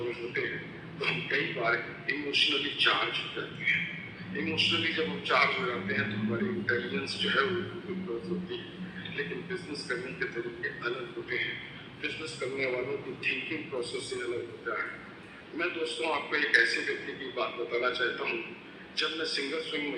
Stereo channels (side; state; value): both; identical; correlation 1.00